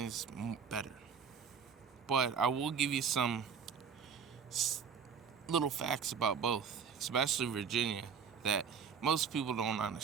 is better. But I will give you some little facts about both, especially Virginia, that most people don't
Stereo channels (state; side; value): quieter; left; 6.7 dB